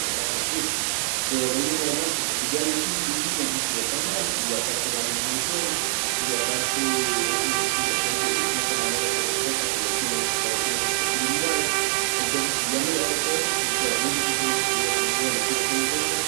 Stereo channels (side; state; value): left; silent; 62 dB below the other